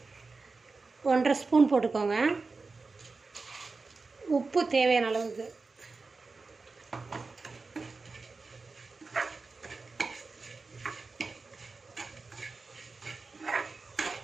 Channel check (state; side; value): quieter; left; 4.0 dB